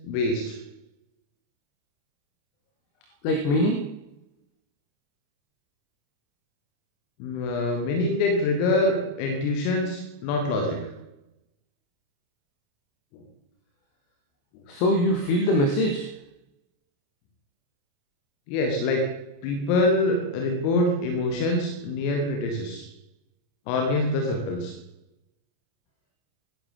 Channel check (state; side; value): late; right; 28 ms